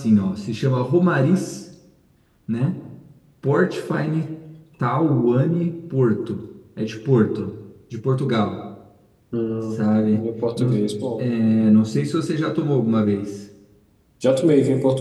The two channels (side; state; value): both; identical; correlation 1.00